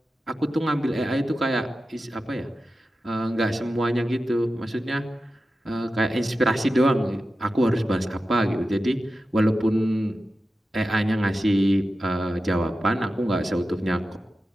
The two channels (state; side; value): normal; both; correlation 0.93